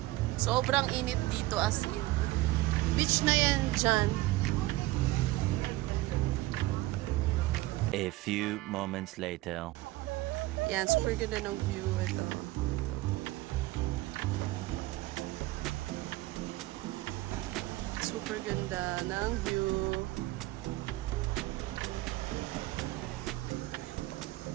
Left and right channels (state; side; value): quieter; left; 18.3 dB